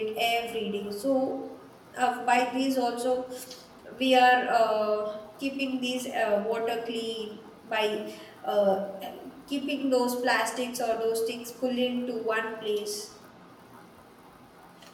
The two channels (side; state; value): both; identical; correlation 1.00